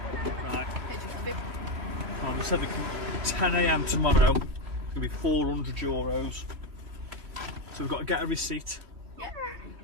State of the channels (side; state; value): left; late; 3.1 ms